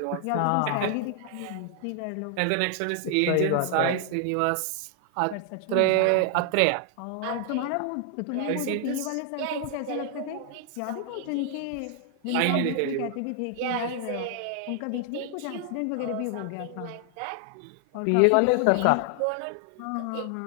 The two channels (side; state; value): both; different; correlation 0.00